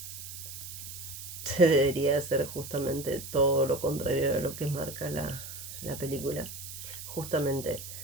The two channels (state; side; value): noise; right; hiss, 10 dB below the sound